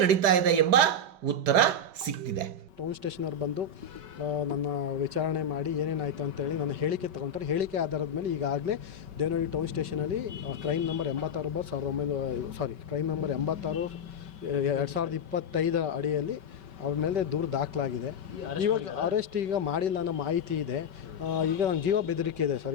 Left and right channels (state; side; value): late; left; 5.2 ms